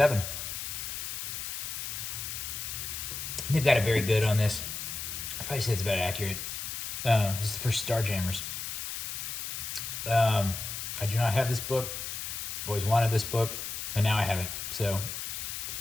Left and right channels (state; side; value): noise; left; hiss, 5 dB below the sound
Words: They've got it very good on this. I probably say it's about accurate. This is the first Starjammers. I do not have this book. I've always wanted this book, and now I have it. So